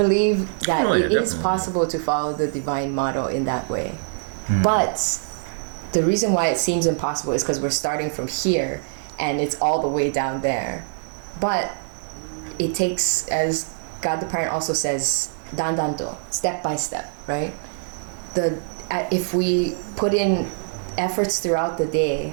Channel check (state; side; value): silent; left; digital silence